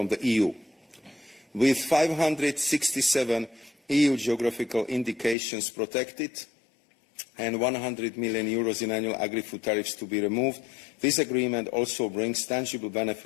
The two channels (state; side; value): drops out; right; at 5.4 s